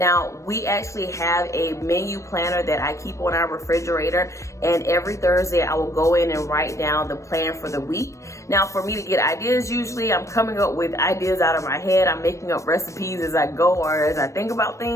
we actually have a menu planner that I keep on our refrigerator, and every Thursday I will go in and write down the plan for the week. Now, for me to get ideas, usually I'm coming up with ideas out of my head. I'm making up recipes as I go or as I think about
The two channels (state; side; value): late; right; 0.15 ms